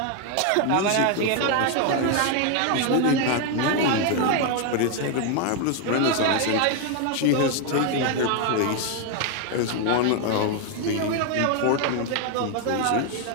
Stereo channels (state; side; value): different; both; correlation 0.01